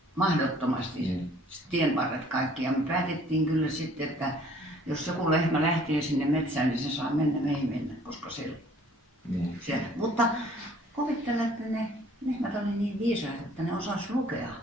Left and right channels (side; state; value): both; normal; correlation 0.56